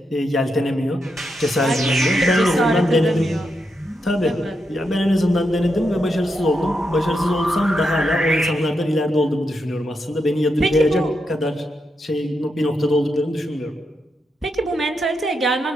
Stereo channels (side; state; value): both; normal; correlation 0.84